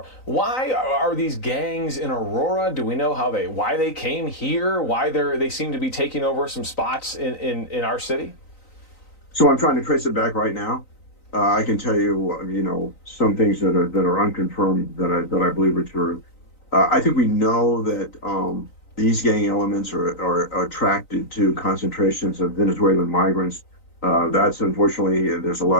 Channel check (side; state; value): right; late; 3.9 ms